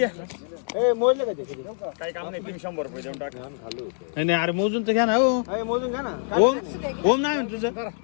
ए मोजले का ते किती? काही काम नाही, तुम्ही 100 रुपये देऊन टाका. नाही नाही, अरे मोजून तर घ्या ना. हो ए मोजून घ्या ना. ओम ओम नाही म्हणत तुझं.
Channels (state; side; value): silent; right; 62 dB below the other